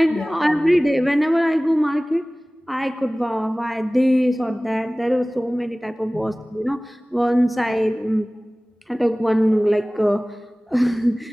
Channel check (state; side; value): normal; both; correlation 0.98